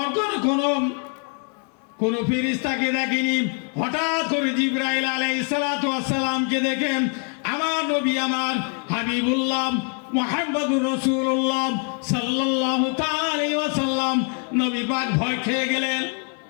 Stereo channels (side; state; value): right; quieter; 39.9 dB